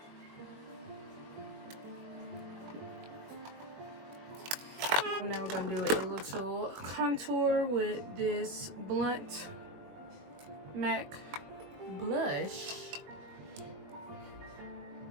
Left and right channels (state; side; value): late; left; 21 ms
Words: Now we're gonna do a little contour with this blunt MAC blush.